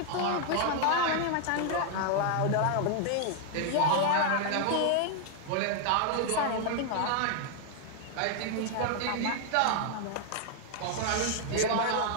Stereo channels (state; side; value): different; both; correlation 0.00